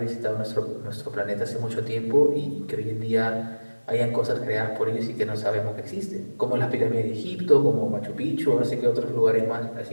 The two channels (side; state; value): both; inverted; correlation -1.00